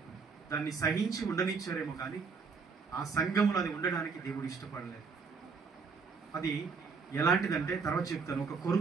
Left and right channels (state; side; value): quieter; left; 5.1 dB